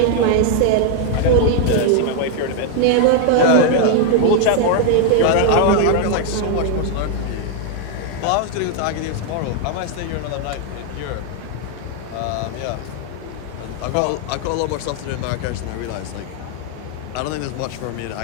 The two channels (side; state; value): both; different; correlation 0.00